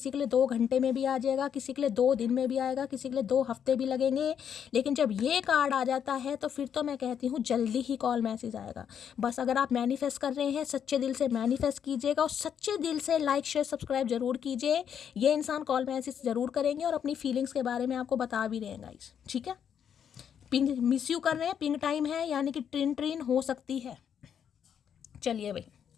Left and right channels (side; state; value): right; quieter; 8.3 dB